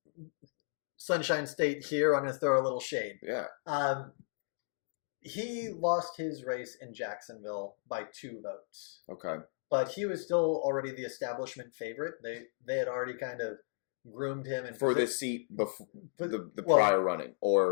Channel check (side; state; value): right; silent; digital silence